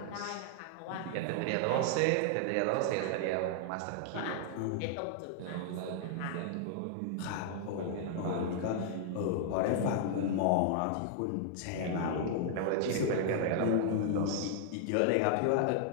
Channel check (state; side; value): different; both; correlation 0.00